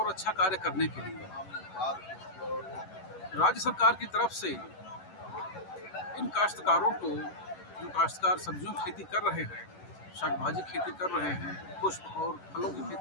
अच्छा कार्य करने के लिए। राज्य सरकार की तरफ से इन काश्तकारों को, जो काश्तकार सब्जियों की खेती कर रहे हैं, शाक भाजी खेती कर रहे हैं, पुष्प और फलों की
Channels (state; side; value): late; right; 11 ms